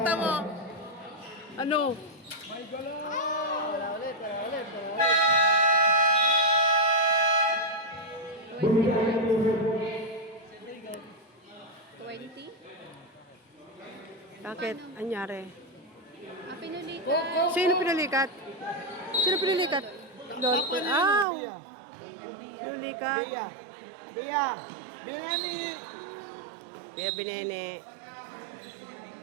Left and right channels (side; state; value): left; drops out; at 21.2 s